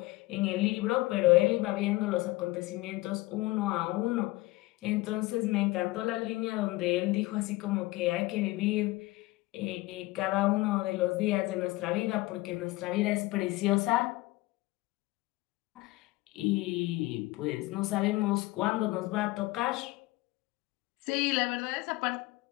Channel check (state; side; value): quieter; right; 20.3 dB